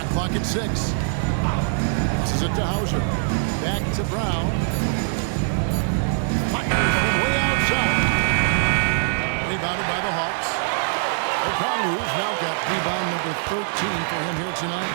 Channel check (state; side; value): silent; left; digital silence